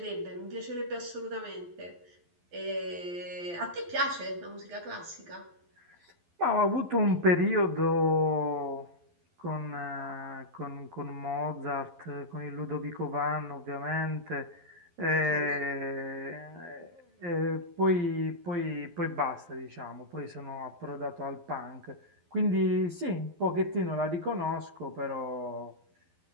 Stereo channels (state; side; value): late; left; 12 ms